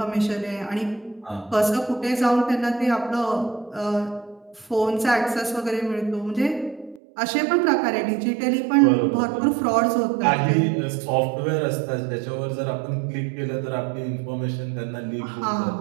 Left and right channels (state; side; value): drops out; left; at 7.0 s